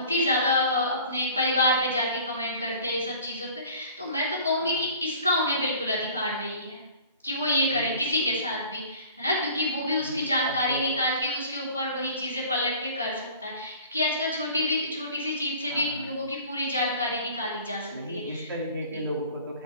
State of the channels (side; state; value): both; inverted; correlation -0.47